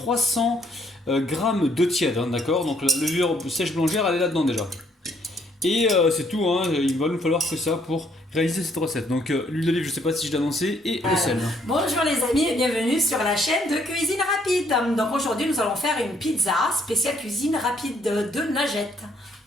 g d'eau tiède, hein, d'accord. Donc la levure sèche boulangère, elle est là-dedans déjà. Et c'est tout, hein, il va nous falloir que ça pour réaliser cette recette. Donc l'huile d'olive, je sais pas si je l'ai annoncé, et le sel. Bonjour les amis et bienvenue sur la chaîne de cuisine rapide. Donc aujourd'hui nous allons faire une pizza spéciale cuisine rapide de Najette.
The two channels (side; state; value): both; normal; correlation 0.68